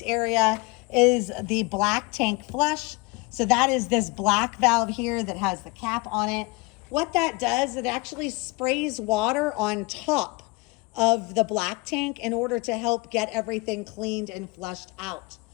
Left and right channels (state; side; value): quieter; right; 25.6 dB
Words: area is the black tank flush. So that is this black valve here that has the cap on it. What that does, it actually sprays water on top of the black tank in order to help get everything cleaned and flushed out.